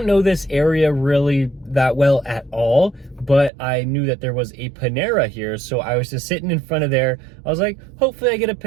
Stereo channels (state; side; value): drops out; left; at 3.5 s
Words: know this area really that well at all, but I knew that there was a Panera here, so I was just sitting in front of there. I was like, hopefully I get a